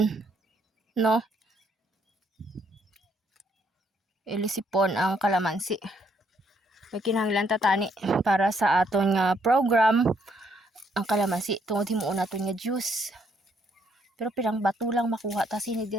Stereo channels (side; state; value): both; normal; correlation 0.70